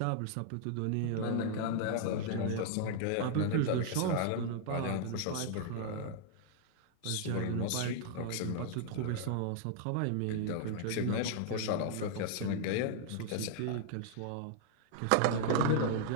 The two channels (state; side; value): different; both; correlation -0.01